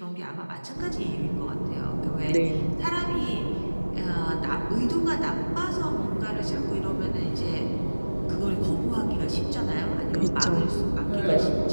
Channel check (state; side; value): inverted; both; correlation -1.00